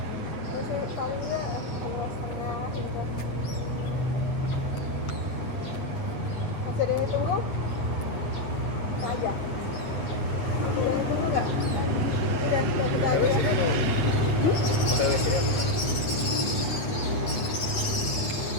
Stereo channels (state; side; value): late; right; 8.5 ms